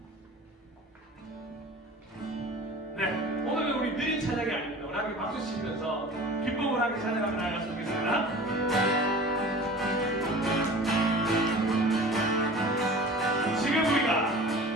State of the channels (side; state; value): both; normal; correlation 0.40